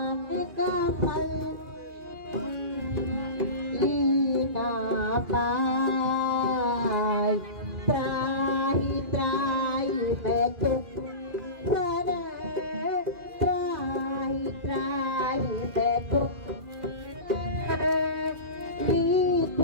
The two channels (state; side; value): late; left; 2.4 ms